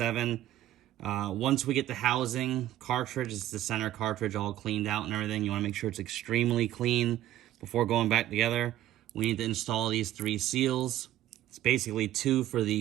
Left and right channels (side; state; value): left; quieter; 13.4 dB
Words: Once we get the housing cartridge, it's the center cartridge all cleaned out and everything. You want to make sure it's extremely clean before going back together. We need to install these 3 seals. It's basically 2 for